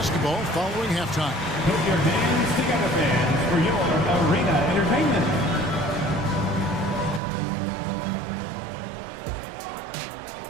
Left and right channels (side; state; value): left; drops out; at 7.2 s